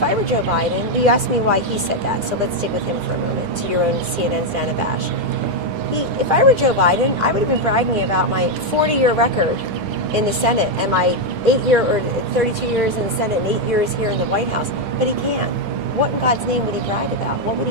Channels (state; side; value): late; left; 9.9 ms